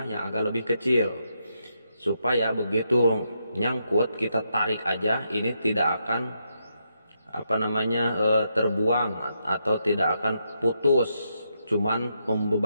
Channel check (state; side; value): inverted; both; correlation -0.81